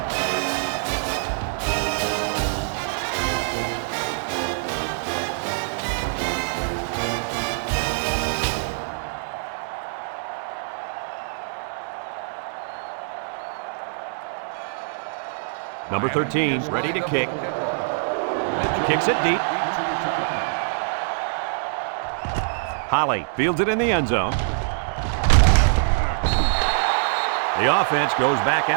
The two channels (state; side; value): silent; left; digital silence